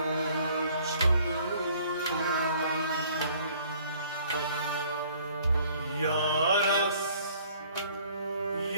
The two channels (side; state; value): both; inverted; correlation -0.57